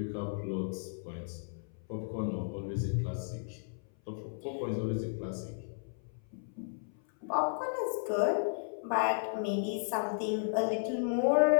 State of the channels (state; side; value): silent; right; 55 dB below the other